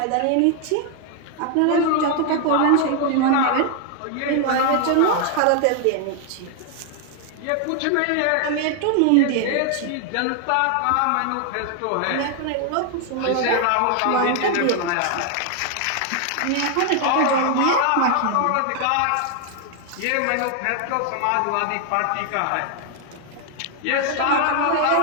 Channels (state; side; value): different; both; correlation 0.00